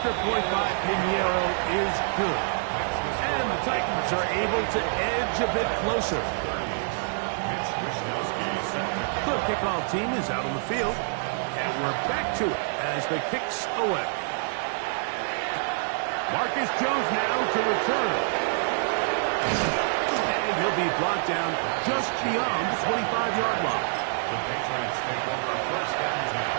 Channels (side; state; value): left; silent; 59 dB below the other